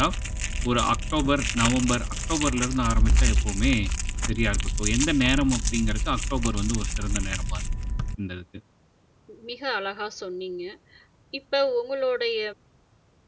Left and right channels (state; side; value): identical; both; correlation 1.00